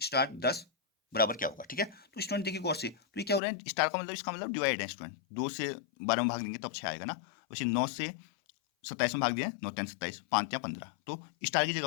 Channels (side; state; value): right; drops out; at 3.4 s